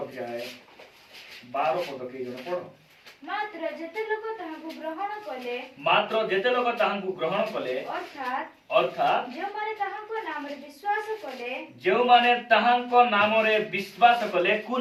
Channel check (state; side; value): identical; both; correlation 1.00